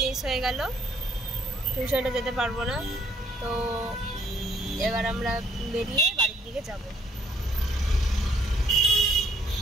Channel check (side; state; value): both; normal; correlation 0.66